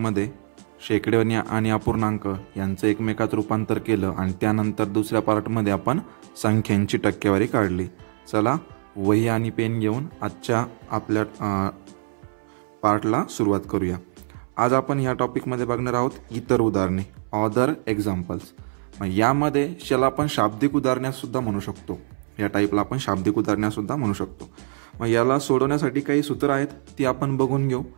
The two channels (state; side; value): silent; left; 63 dB below the other